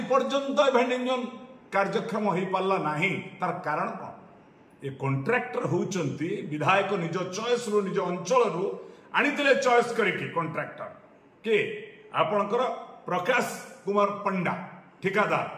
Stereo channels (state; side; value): identical; both; correlation 1.00